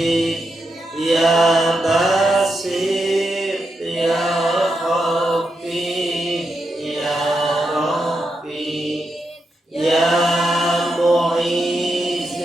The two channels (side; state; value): both; normal; correlation 0.85